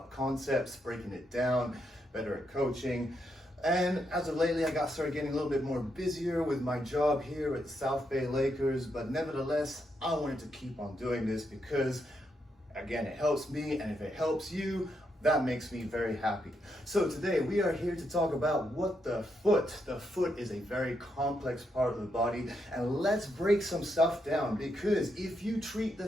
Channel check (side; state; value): both; normal; correlation 0.80